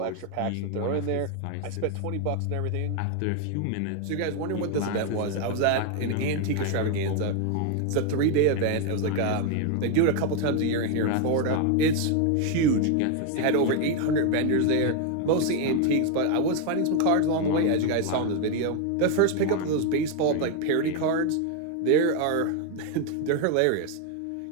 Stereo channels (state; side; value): different; both; correlation 0.01